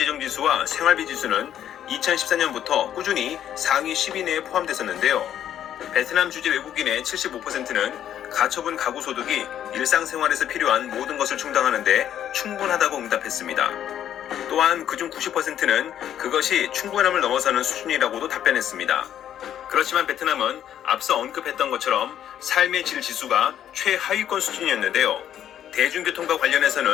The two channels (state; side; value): quieter; right; 10.5 dB